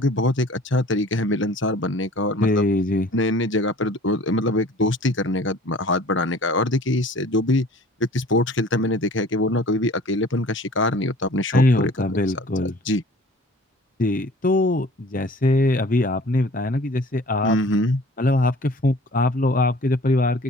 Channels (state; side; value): normal; both; correlation 0.48